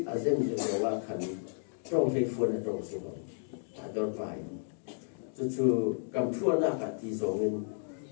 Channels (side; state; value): right; silent; digital silence